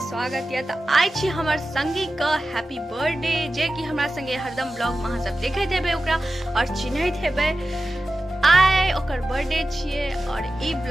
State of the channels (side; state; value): both; normal; correlation 0.94